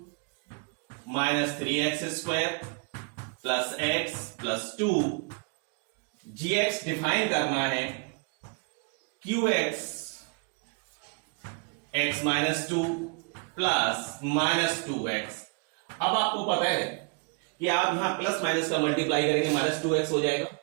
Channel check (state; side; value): quieter; left; 35.1 dB